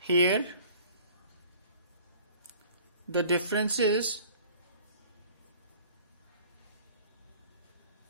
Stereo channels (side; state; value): both; inverted; correlation -0.50